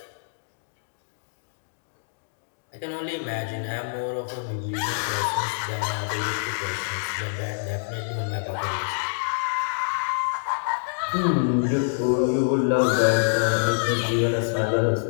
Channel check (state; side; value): silent; right; digital silence